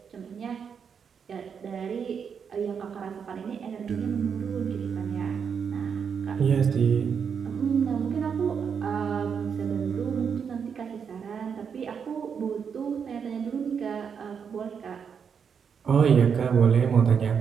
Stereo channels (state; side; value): quieter; left; 6.8 dB